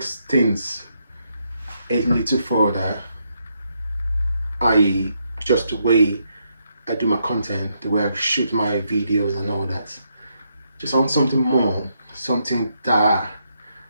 things a little further, i.e. just the way I do my content, the way I shoot my videos and all that. Just I want something more, something that,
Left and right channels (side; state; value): both; inverted; correlation -0.78